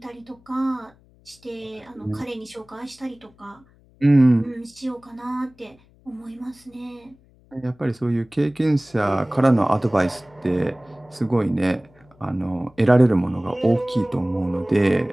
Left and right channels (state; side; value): noise; left; hum, 30 dB below the sound